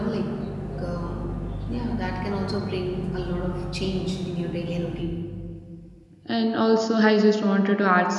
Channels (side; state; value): both; identical; correlation 1.00